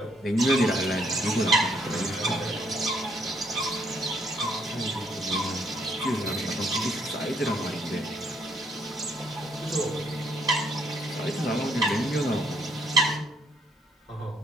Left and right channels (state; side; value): normal; both; correlation 0.69